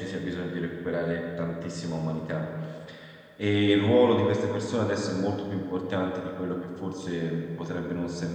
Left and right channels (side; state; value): both; identical; correlation 1.00